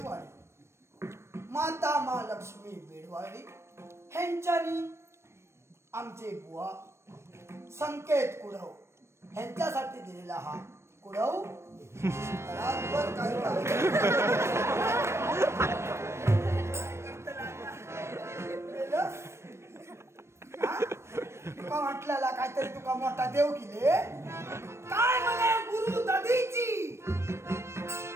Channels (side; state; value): left; late; 0.13 ms